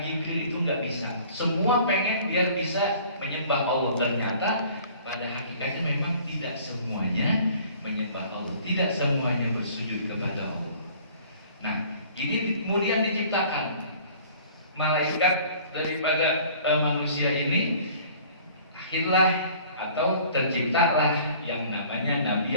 Jibril itu nggak bisa. Semua pengen biar bisa menyembah Allah, ternyata pada hakikatnya memang tidak semuanya menyembah Allah, tidak semuanya bersujud kepada Allah. Nah, ini kemudian diciptakan malaikat daripada manusia ini, akhirlah atau terciptalah yang namanya Nabi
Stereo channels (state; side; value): inverted; both; correlation -0.51